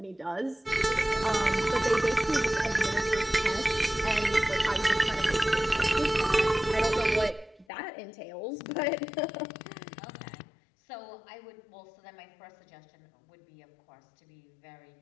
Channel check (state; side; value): drops out; right; at 7.7 s